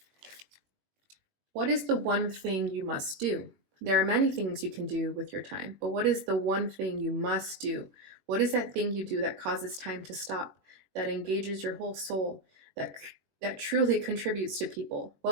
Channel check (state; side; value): late; left; 21 ms